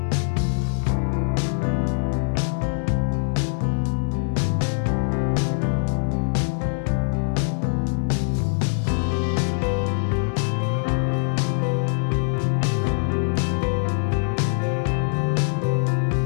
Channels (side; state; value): right; silent; 63 dB below the other